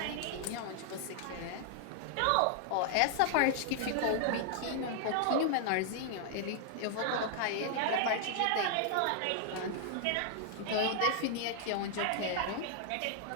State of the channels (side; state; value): both; different; correlation 0.00